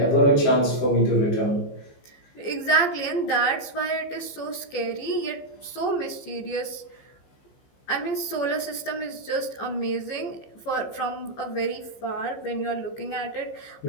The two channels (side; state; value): right; late; 15 ms